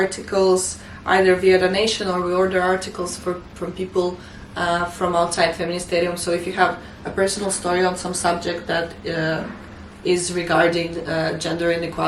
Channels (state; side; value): identical; both; correlation 1.00